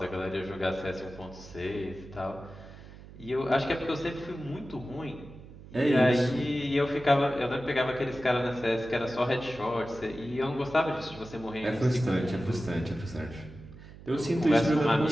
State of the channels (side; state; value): right; noise; hum, 17 dB below the sound